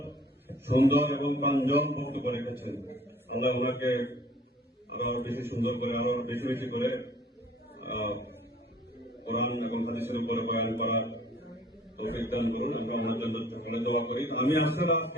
সুন্দর এবং প্রাঞ্জল বক্তব্য রেখেছেন। আল্লাহ ওনাকে আরো বেশি সুন্দর করে, আরো বেশি বেশি করে কোরআন এবং হাদিসের উপরে বয়ান করা তৌফিক দান করুন এবং ওনার জন্য সকলে দোয়া করি। আমি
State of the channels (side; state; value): both; normal; correlation 0.53